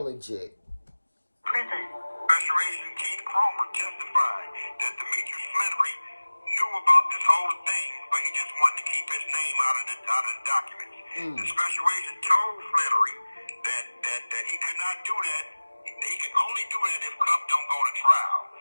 legit. Prison. Special Agent Keith Cromer testified that Demetrius Fleury knew about this whole thing, but he just wanted to keep his name out of the documents. The special agent told Fleury that he could not do that. He can only do that if Cuff don't go to trial.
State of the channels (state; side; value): inverted; both; correlation -1.00